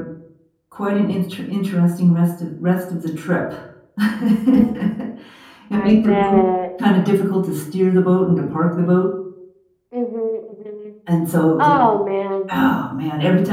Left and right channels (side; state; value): both; identical; correlation 1.00